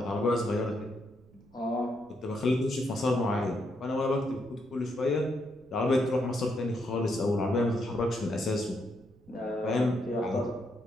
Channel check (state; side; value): noise; right; rumble, 27 dB below the sound